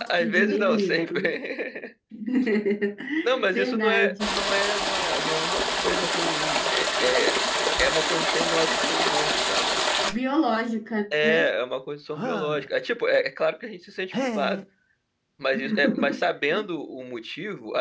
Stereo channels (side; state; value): both; identical; correlation 1.00